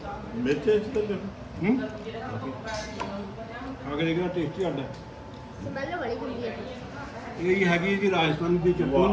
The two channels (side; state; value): both; identical; correlation 1.00